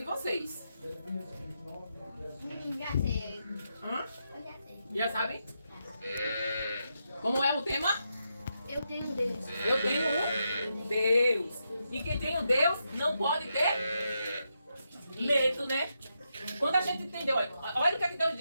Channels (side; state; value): both; inverted; correlation -0.84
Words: vocês. Já sei. Hã? Eu já sei. Já sabem? Como é o tema? Eu tenho Deus. Eu tenho um Deus. E quem tem um Deus não pode ter medo, né? Quando a gente entendeu, olha o que é que Deus